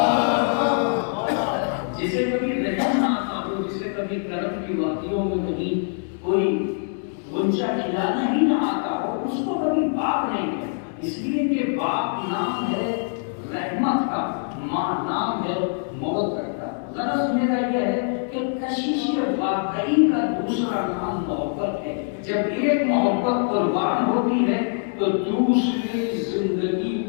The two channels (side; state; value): right; silent; 63 dB below the other